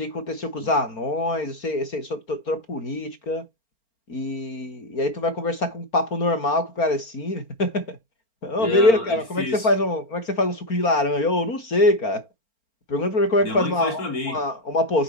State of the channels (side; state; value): right; late; 4.4 ms